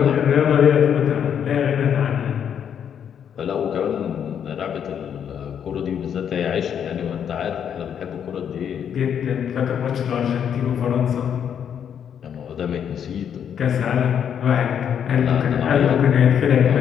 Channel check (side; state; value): right; quieter; 8.5 dB